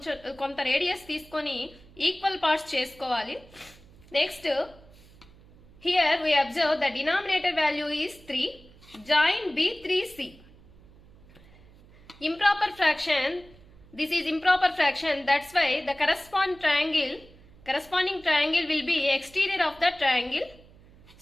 కొంత radius తీసుకొని equal parts చేసుకోవాలి. Next here we observe the denominator value is 3. Join B3C. Improper fraction. This is improper fraction. That's why the corresponding triangle will be exterior of the triangle.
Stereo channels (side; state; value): right; noise; hum, 24 dB below the sound